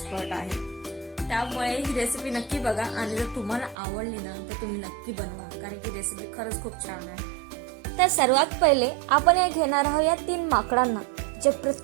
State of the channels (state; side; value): drops out; left; at 3.8 s